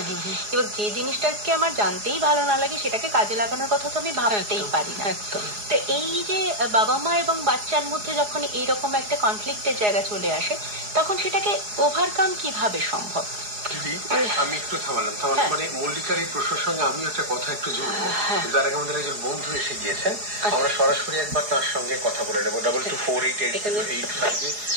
এবার যে জিনিসটাকে আমার জানতেই ভালো না লাগে সেটাকে কাজে লাগানোর কথা তো আমি ভাবতেই পারি না। তো এই যে বাবা মা এবং বাচ্চার মধ্যে যখন এইরকম একটা কনফ্লিক্টের জায়গা চলে আসে, তখন সেটাকে ওভারকাম কিভাবে সম্ভব? আমি একটু থামালাম মানে মল্লিকার এই প্রশ্নের সঙ্গে আমি একটা কথা একটু জুড়বো, কিন্তু আগে আমাদের একজন বন্ধু এসে গিয়েছেন, আমরা সরাসরি একবার তার সঙ্গে কথা বলে নেবো। 22488885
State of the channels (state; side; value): late; left; 4.8 ms